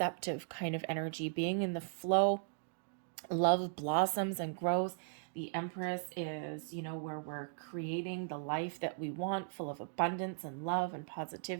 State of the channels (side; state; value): left; silent; digital silence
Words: kind of energy, being in the flow. Love blossoms and grows. The Empress is, where we're creating the life that we want, full of abundance and love and